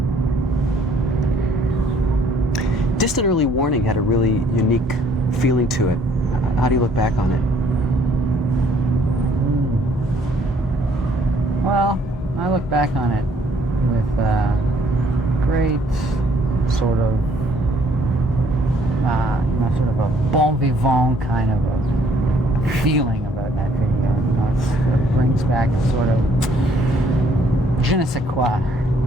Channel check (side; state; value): both; normal; correlation 0.63